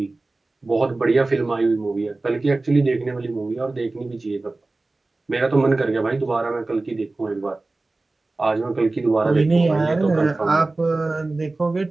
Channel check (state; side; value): quieter; left; 3.2 dB